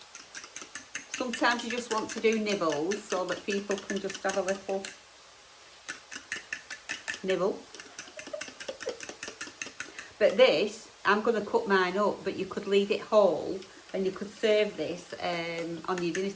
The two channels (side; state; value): both; identical; correlation 1.00